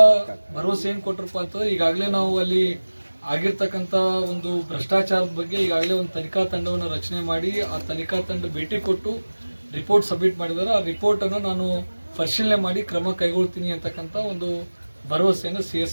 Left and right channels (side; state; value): both; inverted; correlation -1.00